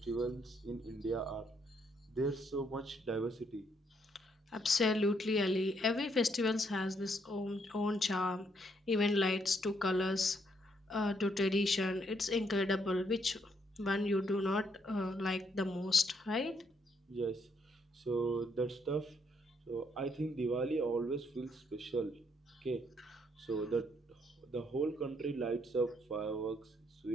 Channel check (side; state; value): both; normal; correlation 0.72